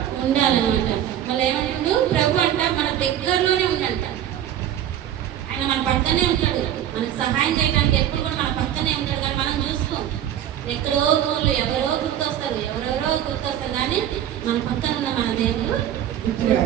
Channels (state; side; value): quieter; left; 11.0 dB